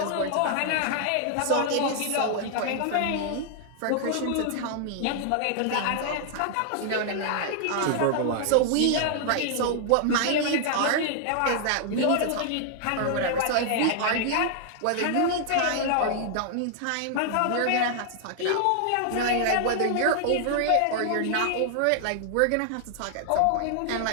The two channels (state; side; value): different; both; correlation 0.00